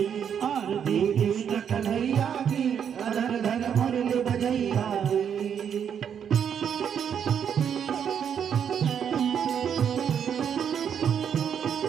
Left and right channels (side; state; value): left; quieter; 8.1 dB